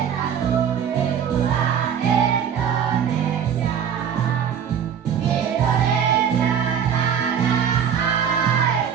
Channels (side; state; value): left; quieter; 8.1 dB